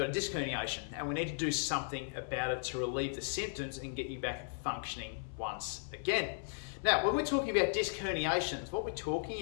a disc herniation and we need to do something about it to relieve the symptoms and get you back functioning once again. Now, when we're talking about disc herniations, what we're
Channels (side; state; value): right; silent; 54 dB below the other